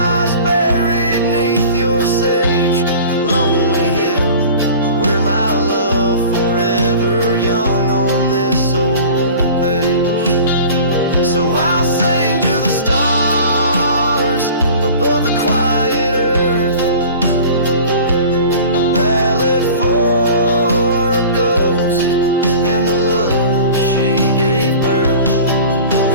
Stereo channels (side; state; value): both; inverted; correlation -0.41